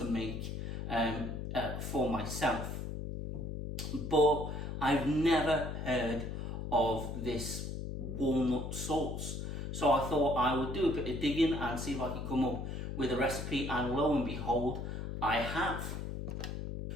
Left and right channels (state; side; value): noise; left; hum, 5 dB below the sound